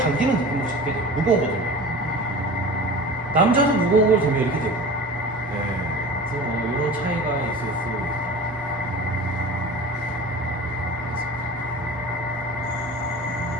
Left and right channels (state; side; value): normal; both; correlation 0.36